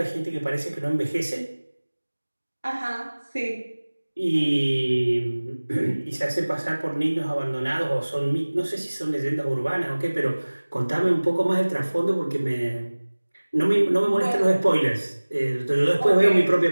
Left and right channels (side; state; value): both; inverted; correlation -1.00